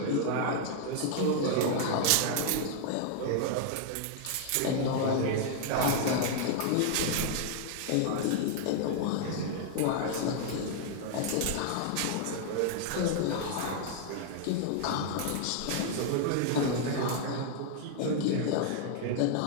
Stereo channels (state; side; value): different; both; correlation 0.00